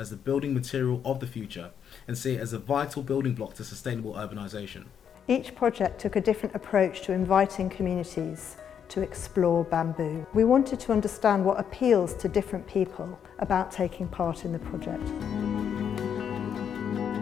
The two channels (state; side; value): quieter; right; 8.1 dB